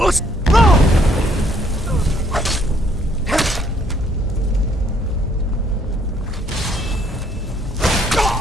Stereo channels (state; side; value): normal; both; correlation 0.67